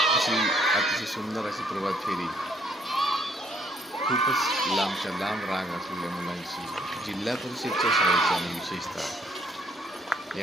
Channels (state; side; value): normal; both; correlation 0.67